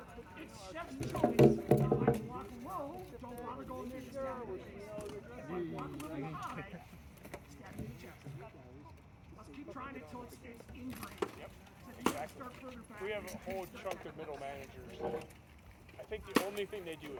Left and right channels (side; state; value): both; identical; correlation 1.00